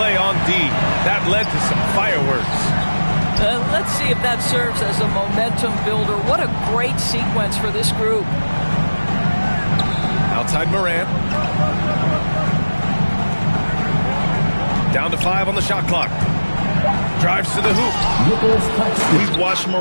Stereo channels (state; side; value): inverted; both; correlation -1.00